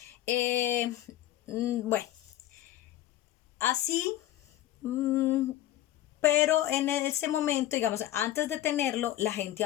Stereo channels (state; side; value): quieter; right; 13.6 dB